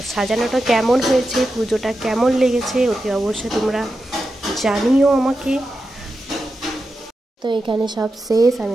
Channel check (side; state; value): both; normal; correlation 0.90